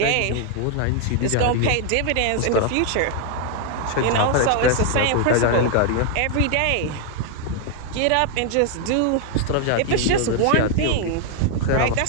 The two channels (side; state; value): both; different; correlation 0.00